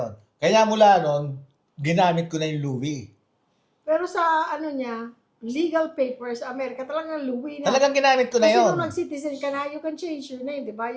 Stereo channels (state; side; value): identical; both; correlation 1.00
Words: Kaya mula nun, ginamit ko na yung Louie. Pero sa legal papers, Amerika, talagang Louie na. Talagang ginamit ko na Kasi yun. nung nag-citizen ka na, you can change your name, di ba?